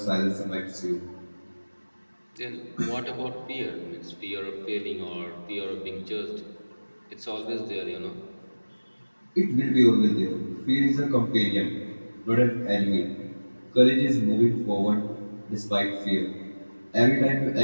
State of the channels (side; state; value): both; inverted; correlation -1.00